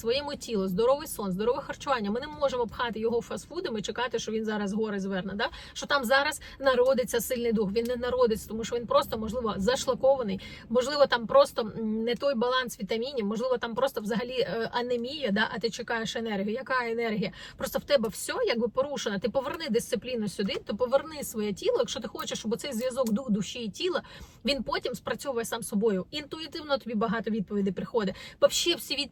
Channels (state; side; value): identical; both; correlation 1.00